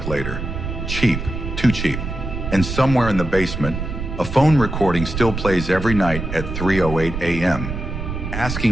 later. Cheap, too cheap. And somewhere in the basement, a phone recording still plays every night at 3:08 a.m.,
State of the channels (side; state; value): right; noise; rumble, 6 dB below the sound